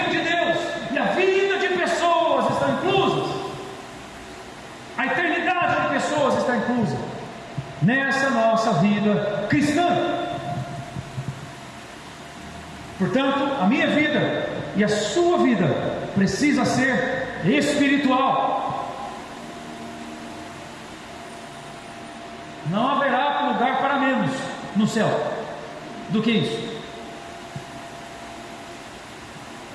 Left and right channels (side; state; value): both; identical; correlation 1.00